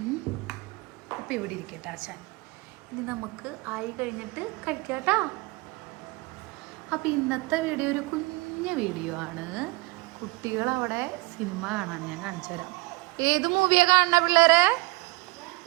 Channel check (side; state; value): left; quieter; 24.1 dB